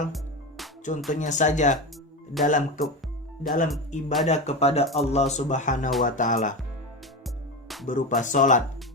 Contohnya saja dalam ibadah kepada Allah Subhanahu wa taala berupa salat.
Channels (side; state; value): both; normal; correlation 0.21